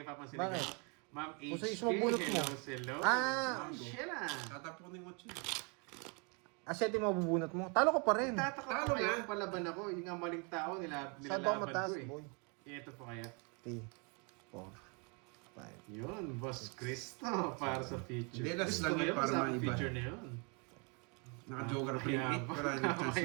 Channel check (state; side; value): quieter; left; 34.0 dB